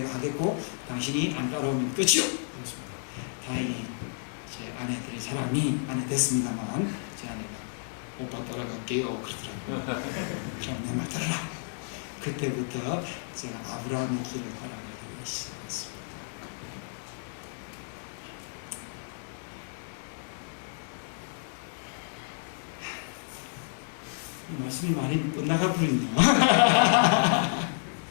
하겠고 당신이 안 따라오면 끝이오. 그렇습니다. 다행히 제 아내 될 사람이 아내 됐습니다만 제 아내가 오빠 따라갈게요 그러더라고요. 그럼 내 말 따라라. 그때부터 제가 아브라함의 길을 따라가기 시작했습니다. 이 말씀이 많이 엇나가 버리네요.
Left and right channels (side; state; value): right; silent; digital silence